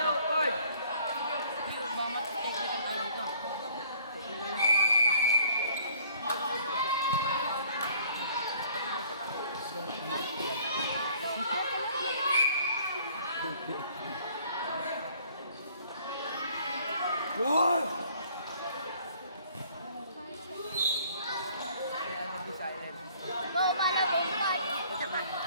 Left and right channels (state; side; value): inverted; both; correlation -0.57